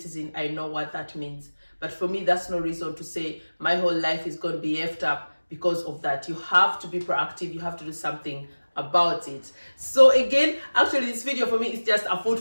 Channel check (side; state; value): both; inverted; correlation -1.00